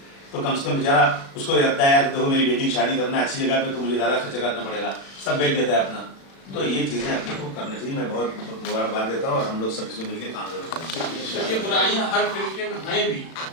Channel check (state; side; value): late; right; 36 ms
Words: तो कम से कम बेचारा उसको लगता है यार देखो मेरी बेटी की शादी करना है अच्छी जगह पे तो मुझे ज़्यादा खर्चा करना पड़ेगा, सब बेच देता है अपना। तो ये चीज़ें अपने को करनी चाहिए। मैं बहुत मुबारकबाद देता हूँ और हम लोग सब इसमें मिलकर काम जरूर करेंगे। ये बुराइयां हर तरीके में हैं भी,